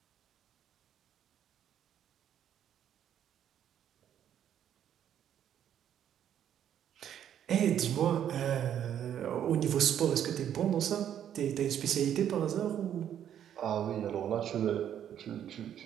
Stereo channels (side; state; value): left; quieter; 9.9 dB